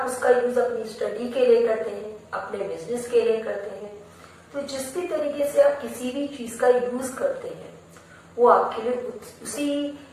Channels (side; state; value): both; identical; correlation 1.00